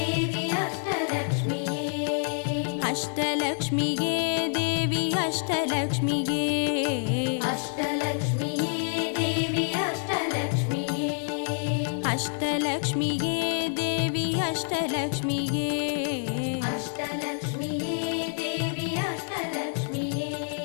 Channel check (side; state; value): right; silent; 60 dB below the other